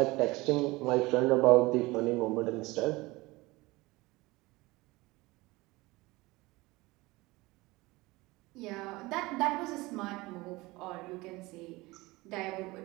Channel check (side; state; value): left; quieter; 21.6 dB